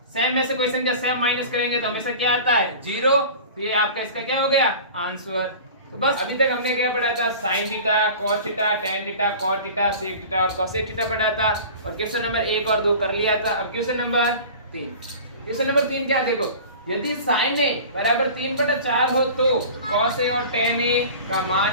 सेम में से कोई संख्या सेम माइनस करेंगे तो हमेशा क्या आता है 0। तो ये आपका इसका क्या हो गया आंसर। तो बस अभी तक हमने क्या पढ़ा था sine theta, cos theta, tan theta, cot theta, sec theta और कोसेक थीटा पढ़ा था और क्वेश्चन नंबर 1 और 2 कर लिया था। अब क्वेश्चन नंबर 3। क्वेश्चन नंबर 3 क्या देखो, यदि साइन ए बराबर 3/4 हो तो कॉस ए और टेन ए का मान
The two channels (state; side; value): inverted; both; correlation -0.39